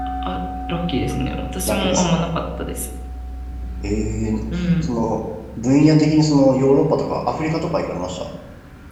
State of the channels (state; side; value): identical; both; correlation 1.00